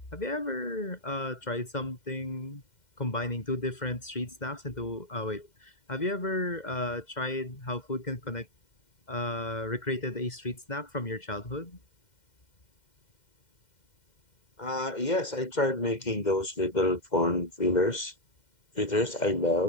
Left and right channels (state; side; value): late; right; 2.1 ms